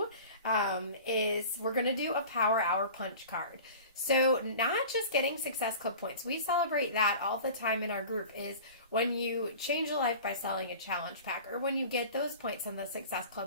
is we're going to do a Power Hour punch card. So not just getting Success Club points. We celebrate that all the time in our group, is when you change a life by selling a challenge pack, or when you get those points on the Success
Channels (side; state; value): both; inverted; correlation -0.39